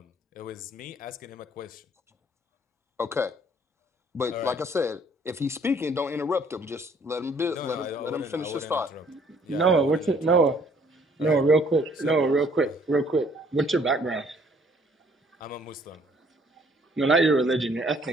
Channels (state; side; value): normal; both; correlation 0.61